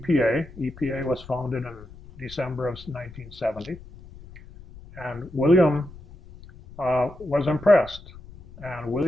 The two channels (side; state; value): left; noise; rumble, 18 dB below the sound